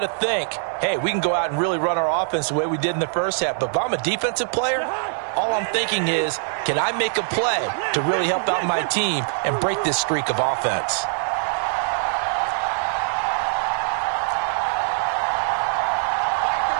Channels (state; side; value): silent; left; digital silence